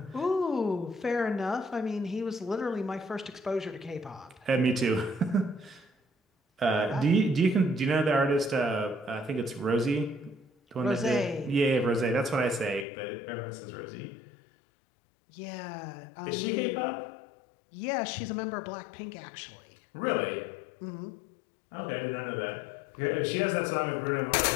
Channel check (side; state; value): right; drops out; at 12.9 s